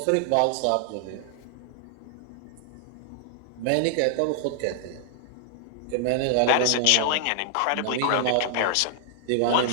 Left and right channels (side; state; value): both; different; correlation 0.00